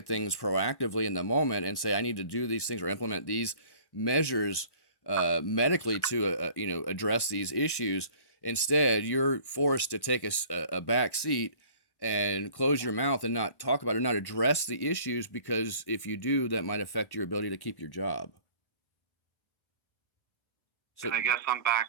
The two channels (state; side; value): late; right; 1.1 ms